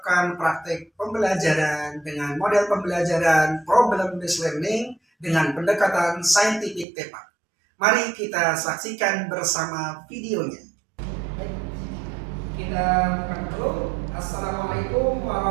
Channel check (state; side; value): drops out; left; at 6.9 s